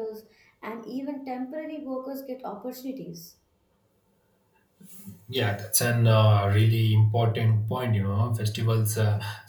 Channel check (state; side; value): identical; both; correlation 1.00